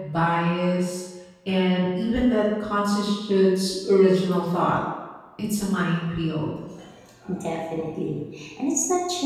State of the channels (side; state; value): both; identical; correlation 1.00